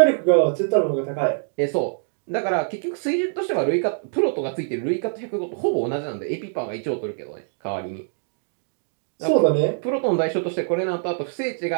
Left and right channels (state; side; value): silent; left; digital silence